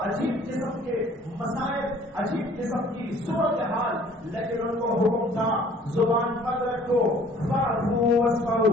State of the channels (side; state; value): both; normal; correlation 0.54